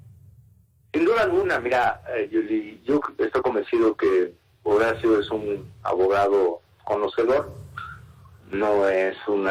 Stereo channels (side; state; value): both; identical; correlation 1.00